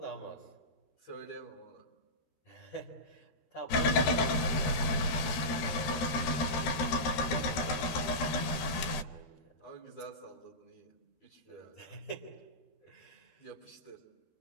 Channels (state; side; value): late; right; 13 ms